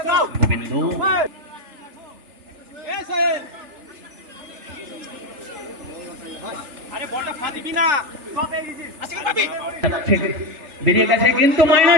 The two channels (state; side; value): late; left; 3.4 ms